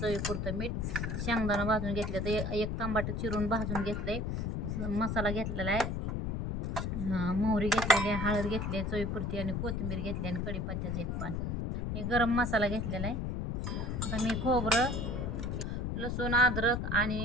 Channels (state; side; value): noise; left; rumble, 2 dB below the sound